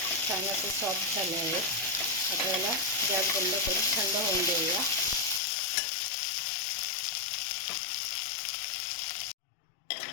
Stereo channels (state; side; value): drops out; right; at 5.4 s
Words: छान असं सॉफ्ट झालं आहे. आपल्याला गॅस बंद करून थंड होऊन देऊया.